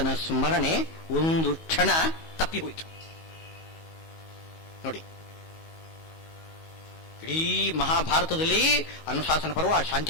ಸ್ಮರಣೆ ಒಂದು ಕ್ಷಣ ತಪ್ಪಿ ಹೋಯಿತು. ನೋಡಿ, ಇಡೀ ಮಹಾಭಾರತದಲ್ಲಿ ಅನುಶಾಸನ ಪರ್ವ,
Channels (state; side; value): late; right; 19 ms